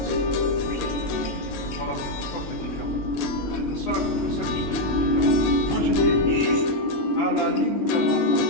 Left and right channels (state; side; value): late; right; 21 ms